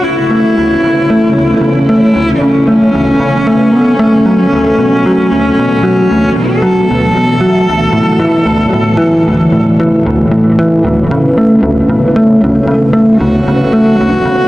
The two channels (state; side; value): normal; both; correlation 0.95